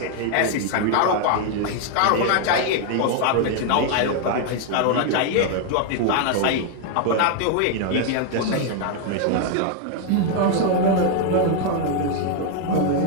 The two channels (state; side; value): different; both; correlation 0.00